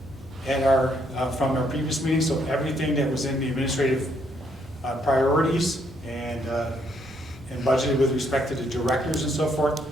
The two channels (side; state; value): both; normal; correlation 0.72